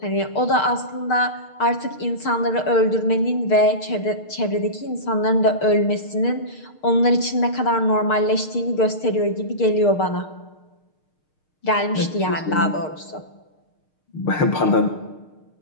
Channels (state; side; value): late; right; 6.5 ms